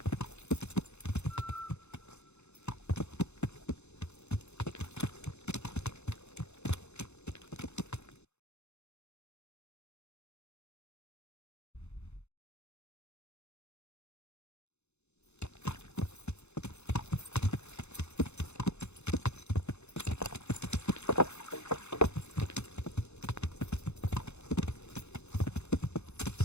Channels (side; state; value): right; late; 0.81 ms